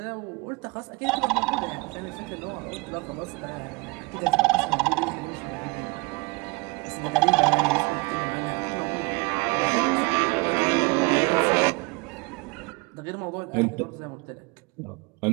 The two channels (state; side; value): quieter; left; 28.5 dB